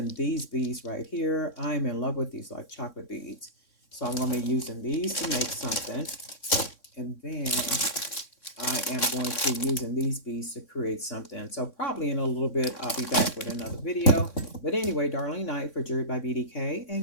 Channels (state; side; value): late; right; 3.6 ms